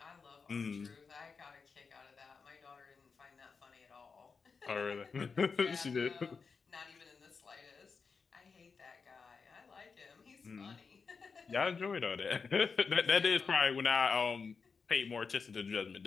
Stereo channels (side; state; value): right; quieter; 5.1 dB